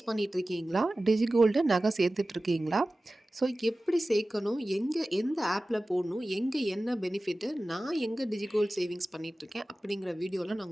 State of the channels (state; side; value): normal; both; correlation 0.96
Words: பண்ணிகிட்டு இருக்கீங்களா? டிஜி கோல்டு நகை சேர்த்துட்ருக்கீங்களா? ஸோ எப்படி சேர்க்கணும், எந்த ஆப்பில் போடணும், எங்கே என்ன பெனிஃபிட்டு, நான் எங்கே டிஜி கோல்டு சேவிங்ஸ் பண்ணிகிட்ருக்கேன் அப்படிங்கிற வீடியோவில் நான்